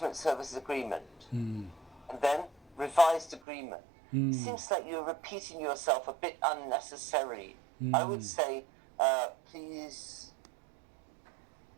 service agreement. And then revised agreement. It seems like you're repeating yourself a bit unnecessarily. I would say, please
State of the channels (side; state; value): left; drops out; at 3.4 s